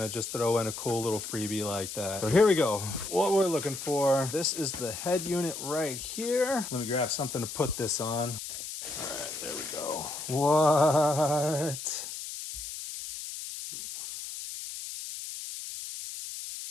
just throw in a cool little freebie like that. So here we go. What we're looking for. This is the head unit right here. Let me grab something to put this on. All right, there we go. What?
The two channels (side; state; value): left; noise; hiss, 8 dB below the sound